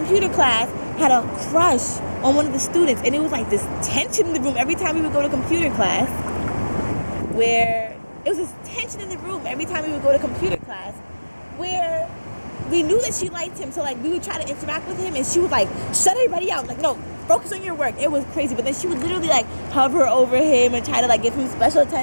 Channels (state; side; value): inverted; both; correlation -1.00